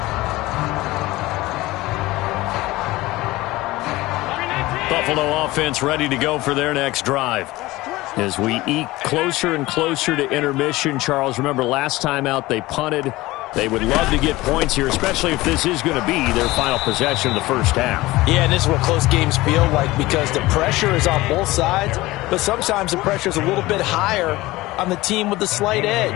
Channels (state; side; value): quieter; right; 19.1 dB